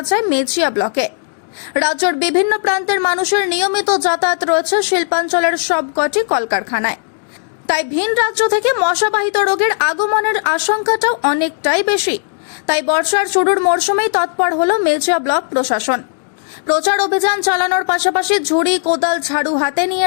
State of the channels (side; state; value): right; silent; digital silence